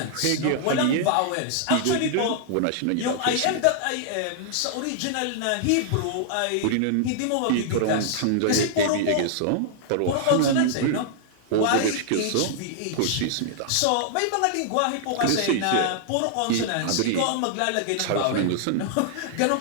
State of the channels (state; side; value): different; both; correlation -0.01